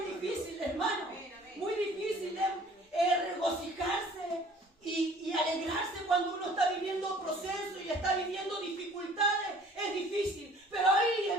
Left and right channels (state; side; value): normal; both; correlation 0.52